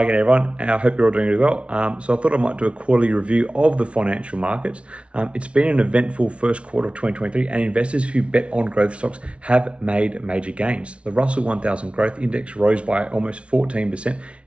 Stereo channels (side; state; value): left; late; 0.060 ms